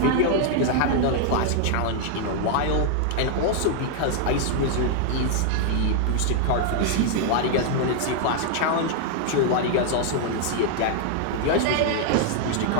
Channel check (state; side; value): different; both; correlation 0.00